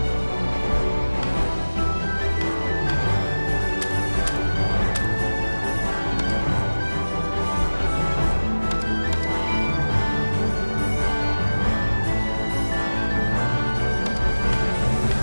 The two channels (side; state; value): both; inverted; correlation -1.00